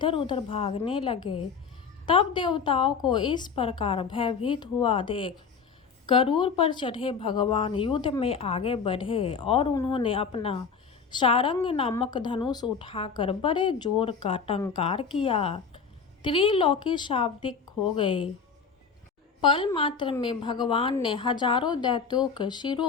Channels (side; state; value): right; quieter; 5.8 dB